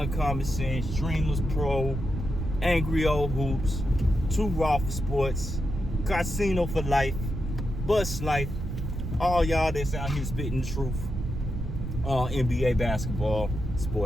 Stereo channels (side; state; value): right; noise; rumble, 5 dB below the sound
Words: Sense, Dreamless Pro, Angry Old Hoops, 2 Raw for Sports, Casino for Life, Bus Life, all y'all that's out here spitting the truth on NBA basketball,